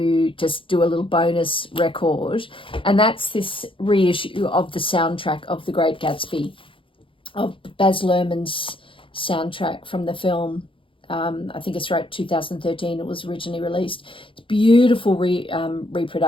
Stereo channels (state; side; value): late; right; 0.25 ms